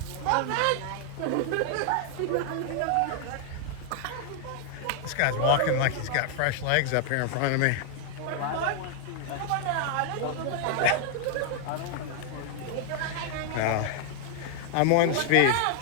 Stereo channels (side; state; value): both; different; correlation 0.00